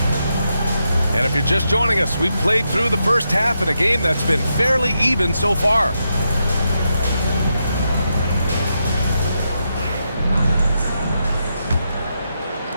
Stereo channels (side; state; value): both; inverted; correlation -0.84